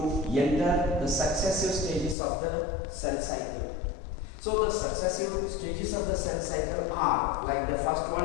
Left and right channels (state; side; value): drops out; right; at 2.1 s